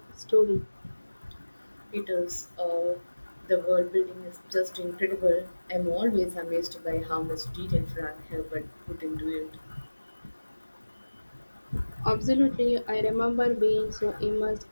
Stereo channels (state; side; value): inverted; both; correlation -1.00